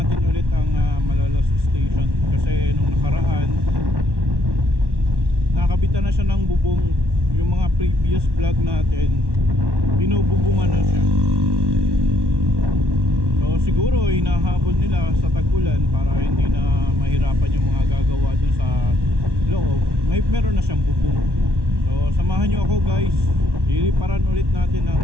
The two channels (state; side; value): late; left; 1.1 ms